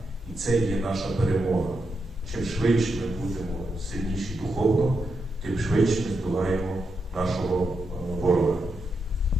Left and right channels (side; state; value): both; normal; correlation 0.85